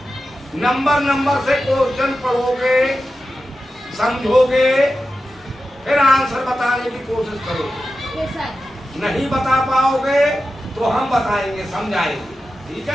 नंबर से क्वेश्चन पढ़ोगे, समझोगे, फिर आंसर बताने की कोशिश करोगे। Yes sir. नहीं बता पाओगे तो हम बताएंगे, समझाएंगे। ठीक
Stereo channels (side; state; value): both; normal; correlation 0.92